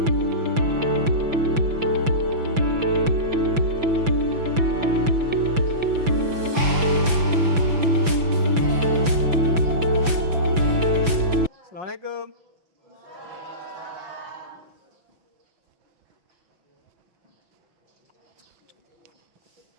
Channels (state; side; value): late; left; 5.9 ms